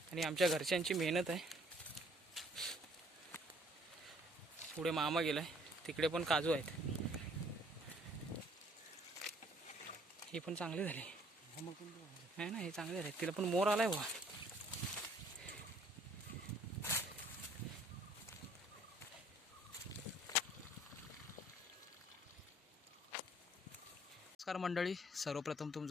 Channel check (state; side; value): normal; both; correlation 0.60